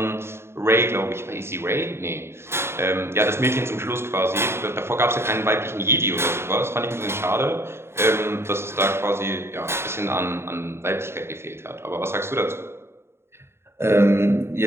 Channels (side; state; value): left; late; 0.12 ms